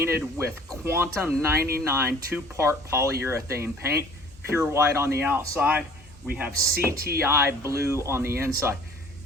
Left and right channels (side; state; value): both; normal; correlation 0.51